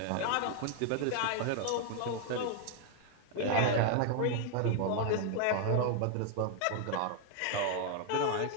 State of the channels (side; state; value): both; different; correlation 0.00